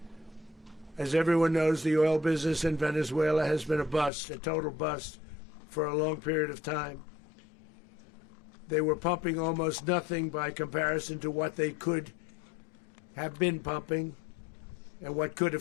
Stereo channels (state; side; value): drops out; right; at 4.1 s